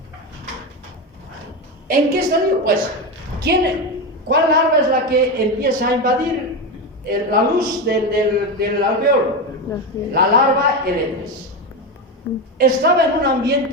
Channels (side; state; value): both; normal; correlation 0.16